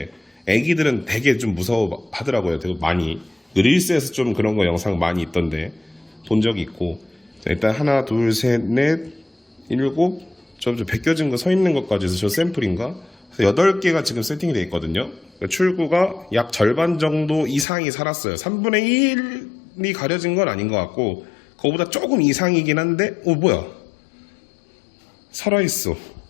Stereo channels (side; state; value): right; drops out; at 17.7 s